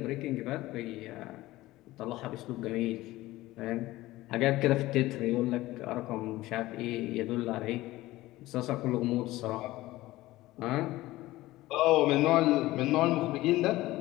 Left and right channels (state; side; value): quieter; right; 17.5 dB